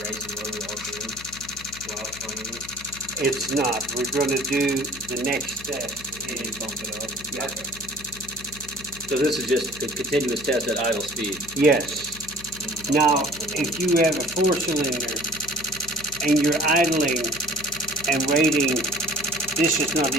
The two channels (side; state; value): left; noise; hum, 17 dB below the sound